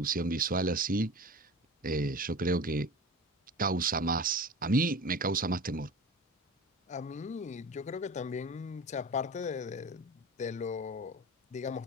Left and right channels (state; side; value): normal; both; correlation 0.34